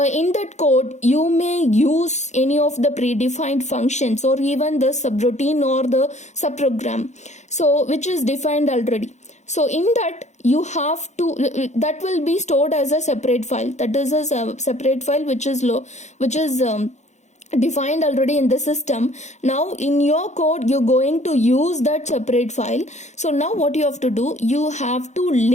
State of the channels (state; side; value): late; right; 0.33 ms